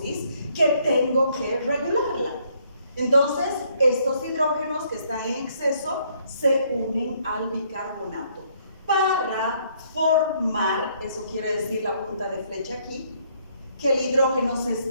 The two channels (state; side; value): inverted; both; correlation -0.68